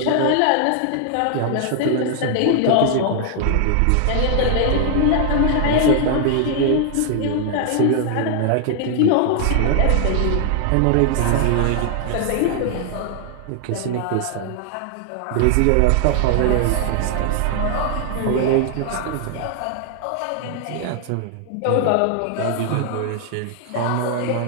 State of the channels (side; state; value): both; different; correlation 0.00